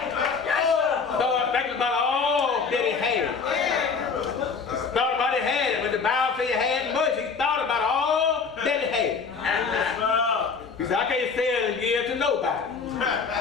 Started thinking about all that he had. Thought about he had it. When the Bible says he had much, he thought about all that he had. He said, I can't sell and give to nobody.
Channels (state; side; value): quieter; right; 5.3 dB